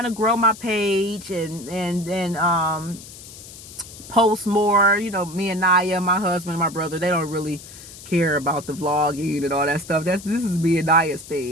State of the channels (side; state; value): left; noise; hiss, 16 dB below the sound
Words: to grow my page and post more. You know, me and Naya, my husband, my brother, they don't really care about the vlogging and all that stuff. This is me and Naya's